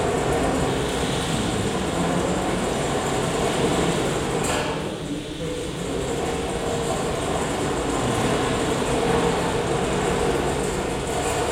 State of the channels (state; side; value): identical; both; correlation 1.00